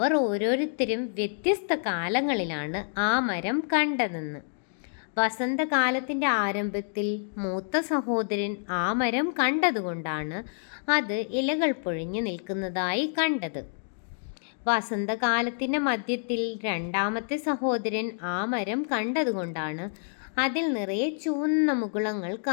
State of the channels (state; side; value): silent; right; digital silence